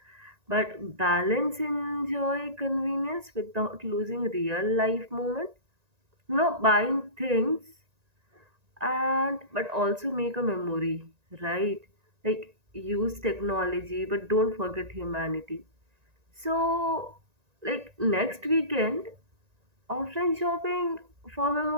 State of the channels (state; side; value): late; left; 1.9 ms